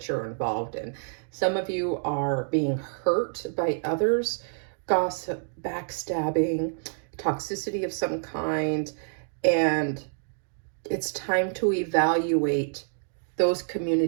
you're involved in. Some of you are being hurt by others, gossip, backstabbing, toxicity of some kind, and it's time to evaluate those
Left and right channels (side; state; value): left; silent; digital silence